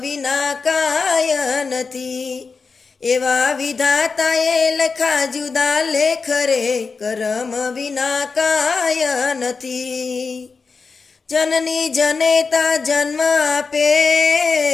કાય નથી. એવા વિધાતાએ લખા જુદા લેખ રે, કરમ વિના કાય નથી. જનની જનેતા જન્મ આપે,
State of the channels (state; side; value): quieter; right; 4.8 dB